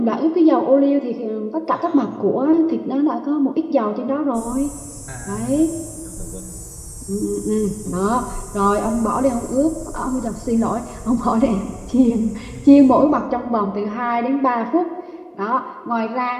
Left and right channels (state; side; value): identical; both; correlation 1.00